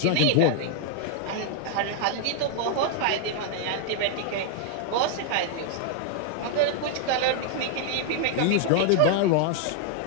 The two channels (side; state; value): both; different; correlation 0.00